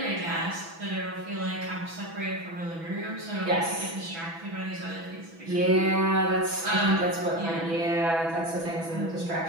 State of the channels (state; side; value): late; left; 6.1 ms